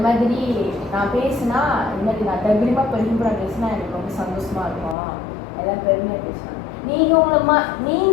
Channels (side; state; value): right; drops out; at 5.0 s